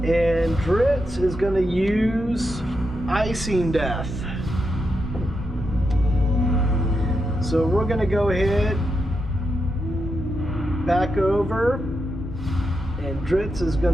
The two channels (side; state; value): both; normal; correlation 0.85